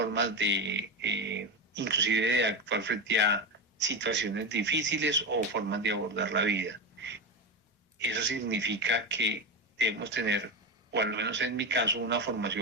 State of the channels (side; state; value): both; normal; correlation 0.17